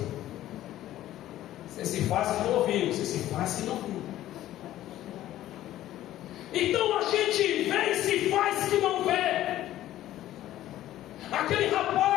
Você se faz que não ouviu. Você se faz que não viu. Então a gente vê e se faz que não vê. Aquele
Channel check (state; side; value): quieter; right; 13.7 dB